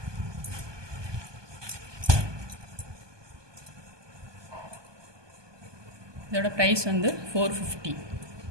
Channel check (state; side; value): late; left; 1.2 ms